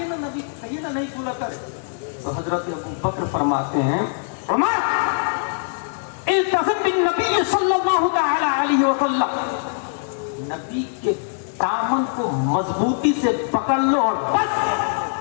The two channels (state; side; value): silent; right; digital silence